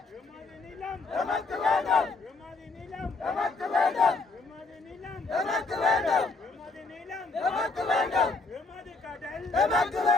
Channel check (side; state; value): right; quieter; 3.7 dB